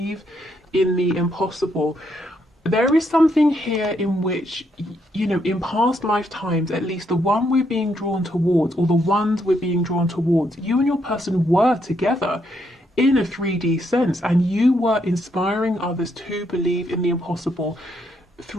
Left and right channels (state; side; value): normal; both; correlation 0.75